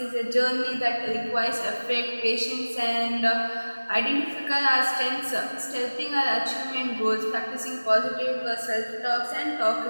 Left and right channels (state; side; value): inverted; both; correlation -1.00